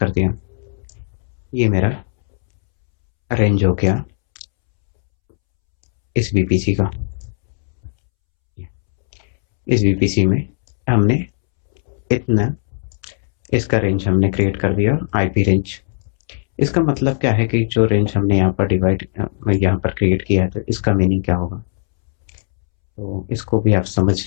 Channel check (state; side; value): silent; right; 67 dB below the other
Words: दिया, ये मेरा रेंज हो गया इस वीपीसी का। इस वीपीसी में हमने इतना, इसका रेंज हमने क्रिएट कर दिया आईपी रेंज। इसका मतलब क्या है कि जो रेंज हमने यहाँ पर यहाँ पर क्रिएट किया है, तो इसका मीनिंग क्या होगा, तो इसको भी आप